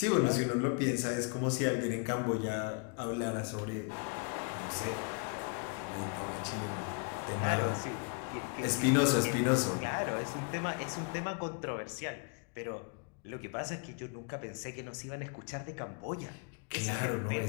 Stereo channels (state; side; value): quieter; right; 37.0 dB